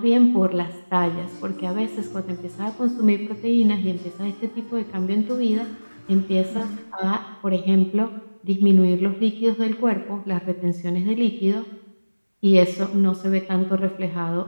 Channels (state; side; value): inverted; both; correlation -1.00